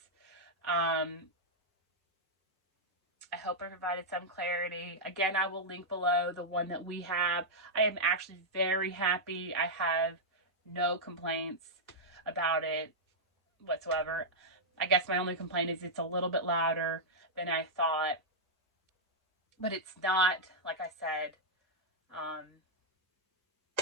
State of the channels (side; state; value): both; normal; correlation -0.07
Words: I hope I provided some clarity. Again, I will link below the one that we have. I am actually very happy. I have no complaints about it whatsoever. I guess my only complaint is it's a little bit louder than I thought, but it's not, like I said,